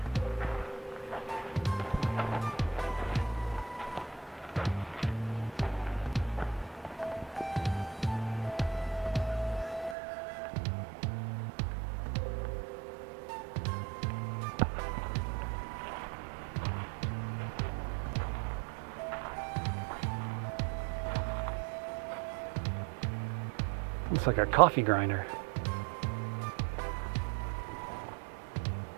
Looks like a coffee grinder.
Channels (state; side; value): drops out; left; at 10.0 s